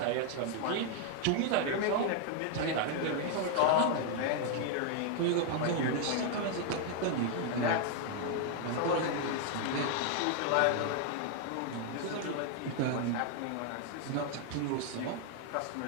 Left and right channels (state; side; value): different; both; correlation 0.00